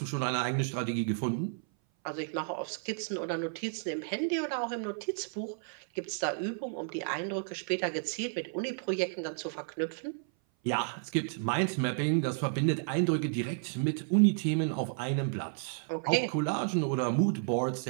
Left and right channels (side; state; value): left; silent; 56 dB below the other